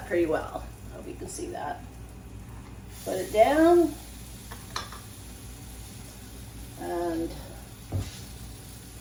pretty well. I hope you can see that. Put it down, and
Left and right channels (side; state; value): both; identical; correlation 1.00